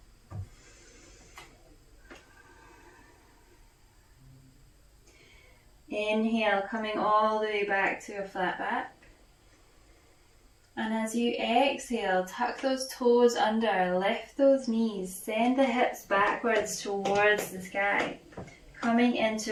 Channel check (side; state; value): both; identical; correlation 1.00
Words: Inhale, coming all the way back to a flat back. And as you exhale, tuck those toes under, lift those knees, send the hips backwards towards the sky, coming